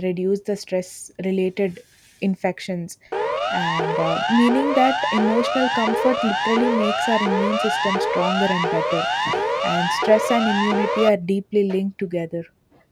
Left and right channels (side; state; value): both; identical; correlation 1.00